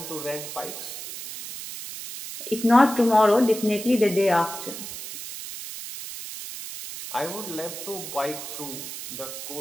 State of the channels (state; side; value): noise; right; hiss, 9 dB below the sound